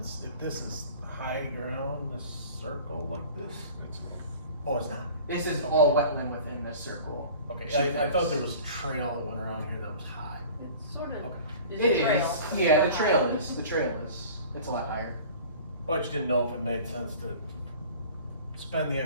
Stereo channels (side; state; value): both; inverted; correlation -0.43